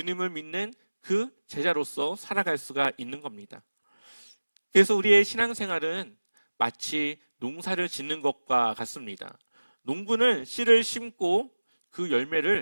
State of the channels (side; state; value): both; inverted; correlation -1.00